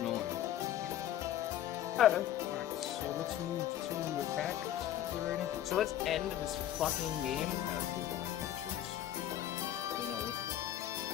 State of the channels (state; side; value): quieter; right; 11.8 dB